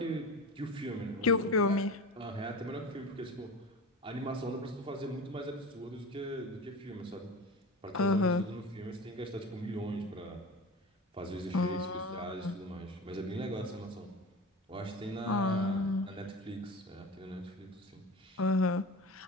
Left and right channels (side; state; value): both; normal; correlation 0.30